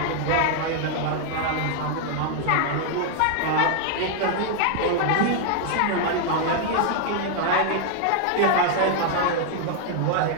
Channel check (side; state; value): both; different; correlation 0.00